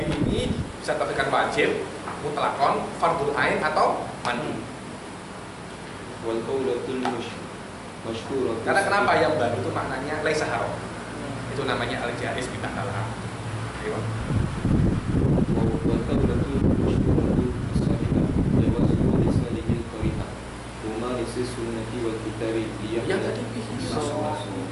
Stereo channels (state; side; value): identical; both; correlation 1.00